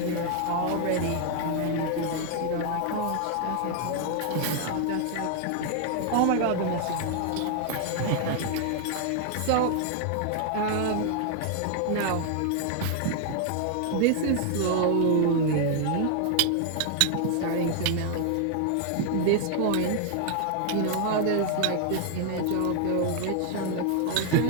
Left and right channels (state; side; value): different; both; correlation 0.00